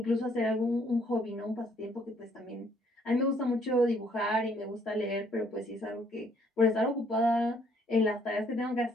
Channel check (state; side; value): normal; both; correlation 0.65